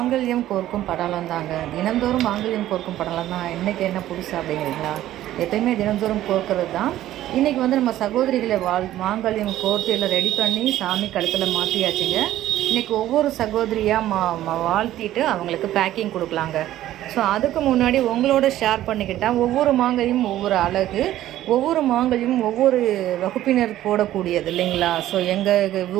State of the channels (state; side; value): quieter; left; 13.6 dB